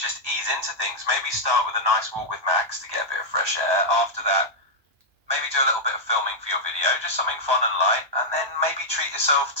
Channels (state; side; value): late; left; 1.2 ms